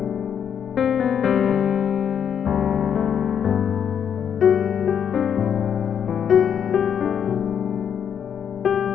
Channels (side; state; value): right; quieter; 8.2 dB